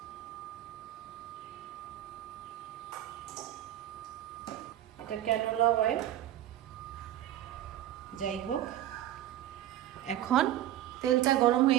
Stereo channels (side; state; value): left; quieter; 12.9 dB